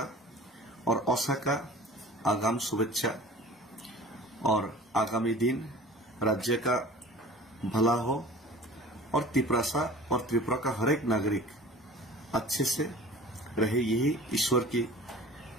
और औसा का आगाम शुभेच्छा और आगामी दिन राज्य का भला हो और त्रिपुरा और त्रिपुरा का हर एक नागरिक अच्छे से रहे यही ईश्वर के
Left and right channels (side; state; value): both; normal; correlation 0.42